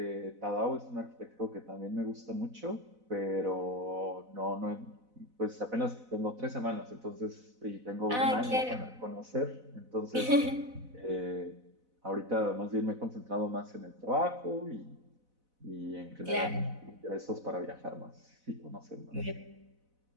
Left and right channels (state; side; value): late; left; 4.0 ms